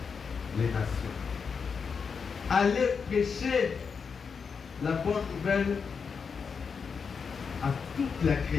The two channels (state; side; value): quieter; right; 5.8 dB